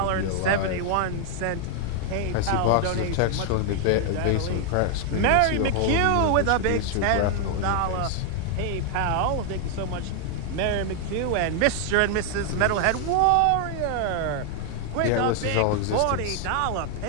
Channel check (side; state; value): both; different; correlation 0.00